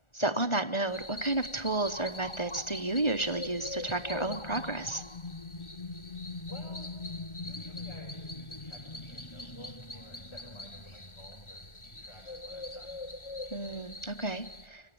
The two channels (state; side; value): late; right; 1.4 ms